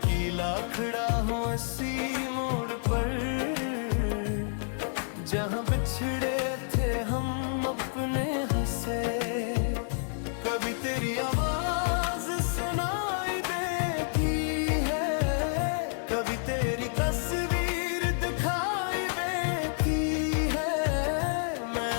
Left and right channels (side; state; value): right; silent; digital silence